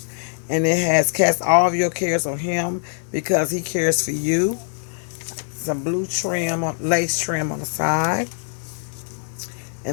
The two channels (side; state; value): right; silent; 64 dB below the other